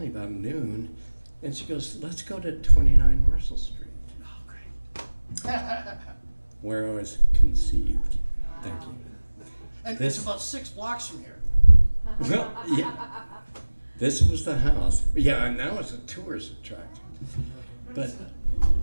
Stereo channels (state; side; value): inverted; both; correlation -1.00